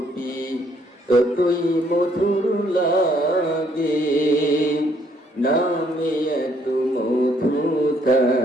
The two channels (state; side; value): normal; both; correlation 0.67